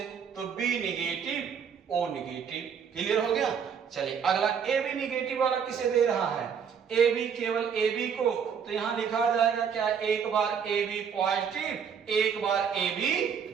तो B negative O negative. Clear हो गया? चलिए अगला ए बी निगेटिव वाला किसे दे रहा है, ए बी, केवल ए बी को, तो यहां लिखा जाएगा क्या, एक बार ए बी पॉजिटिव, एक बार ए बी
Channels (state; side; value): quieter; left; 7.1 dB